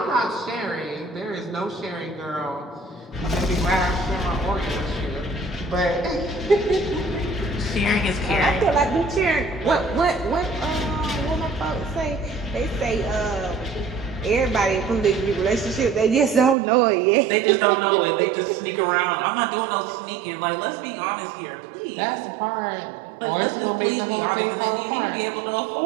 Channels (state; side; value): drops out; left; at 16.6 s